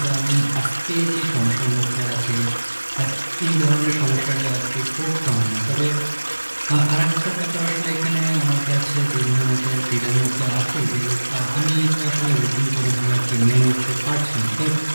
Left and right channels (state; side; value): inverted; both; correlation -1.00